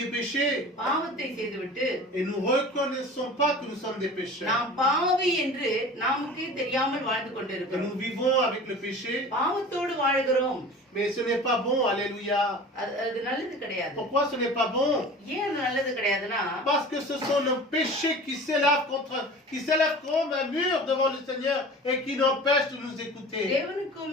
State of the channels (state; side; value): normal; both; correlation 0.39